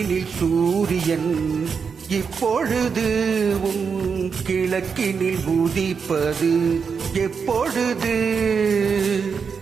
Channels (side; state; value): left; quieter; 5.9 dB